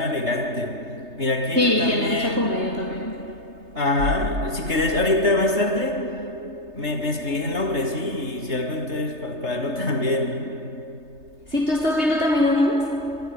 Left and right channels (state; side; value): late; left; 3.3 ms